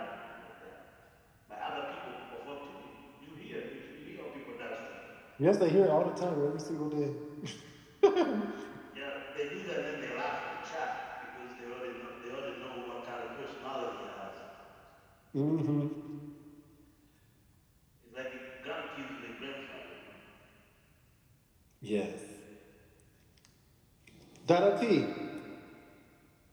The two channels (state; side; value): identical; both; correlation 1.00